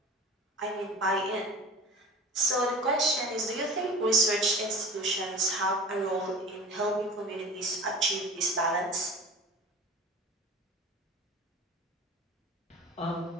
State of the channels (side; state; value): both; normal; correlation 0.38